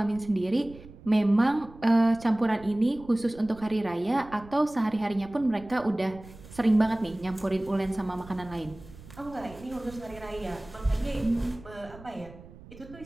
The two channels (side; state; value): right; noise; rumble, 19 dB below the sound